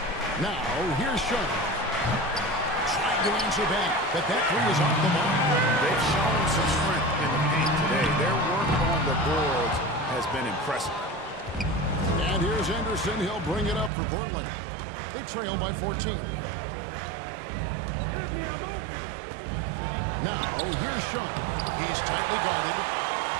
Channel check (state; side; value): drops out; left; at 13.9 s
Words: Now, here's Sean. Trying to answer back, but that 3 is off the mark. They've shown some strength in the paint today. Their work on the boards has been impressive. And here's Anderson. He'll bring it up for Portland. They trail by 14. Now, here's Sean. He's tightly guarded.